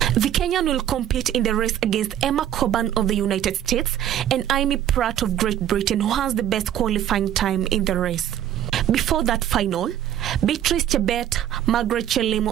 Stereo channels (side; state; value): left; quieter; 11.0 dB